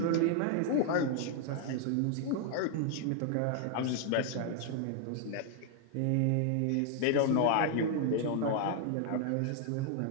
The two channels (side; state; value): both; different; correlation 0.00